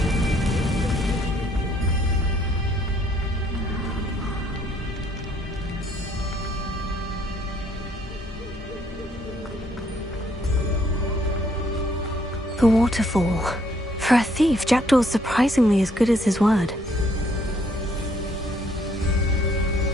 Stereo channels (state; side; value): normal; both; correlation 0.66